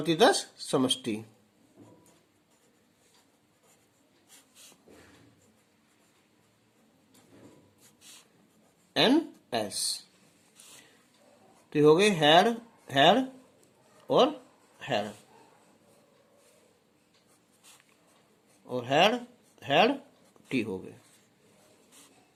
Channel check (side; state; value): both; identical; correlation 1.00